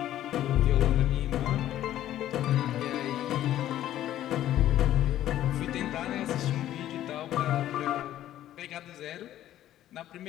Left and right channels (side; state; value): right; quieter; 12.7 dB